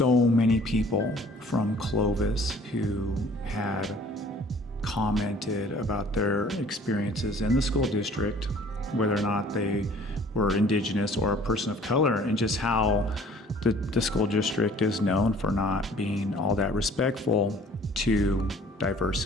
many people from Clovis who had commented about their experiences in the school district, whether or not they were Indigenous or a person of color, and just how the school district is known for not being all that respectful to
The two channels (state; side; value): normal; both; correlation 0.53